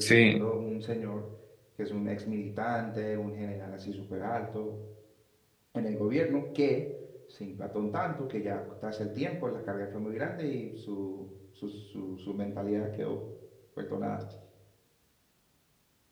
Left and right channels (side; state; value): both; identical; correlation 1.00